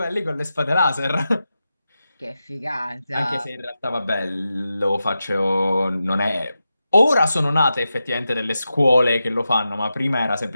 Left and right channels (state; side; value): inverted; both; correlation -0.91